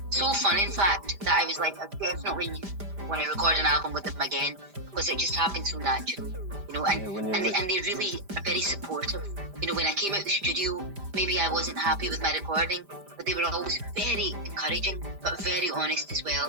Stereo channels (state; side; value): late; left; 5.0 ms